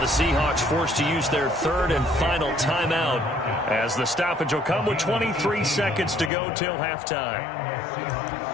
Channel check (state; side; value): drops out; right; at 6.3 s